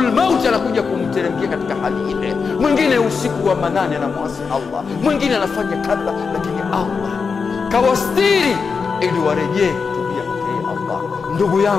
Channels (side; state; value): right; quieter; 5.3 dB